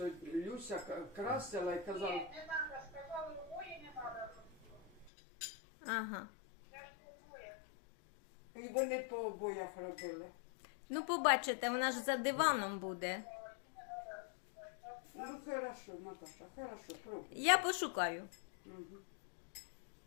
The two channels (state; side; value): drops out; right; at 5.1 s